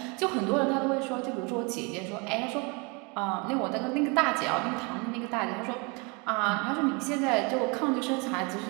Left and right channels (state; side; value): quieter; left; 30.5 dB